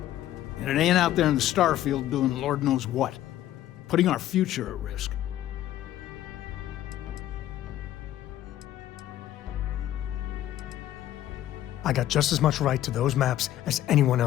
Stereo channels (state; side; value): quieter; right; 12.9 dB